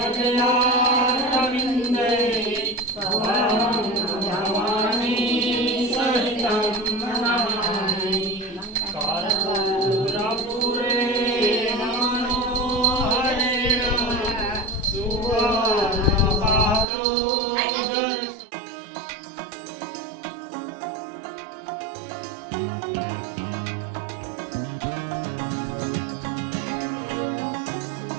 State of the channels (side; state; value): left; drops out; at 16.9 s